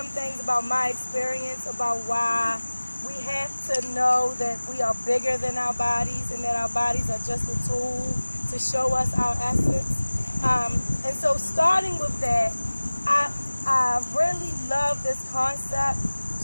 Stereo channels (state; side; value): inverted; both; correlation -1.00